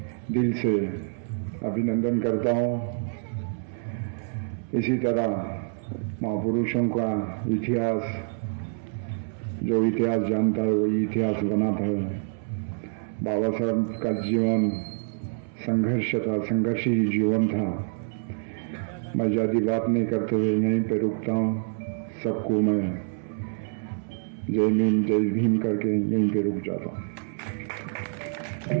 दिल से अभिनंदन करता हूँ। इसी तरह महापुरुषों का इतिहास, जो इतिहास जानता है वही इतिहास बनाता है। बाबा साहब का जीवन संघर्ष था, संघर्षी जीवन था। मैं ज़्यादा बात नहीं करते हुए यहीं पे रुकता हूँ। सबको मैं जय भीम करके यहीं पे रुक जाता हूँ।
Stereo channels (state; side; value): silent; left; 60 dB below the other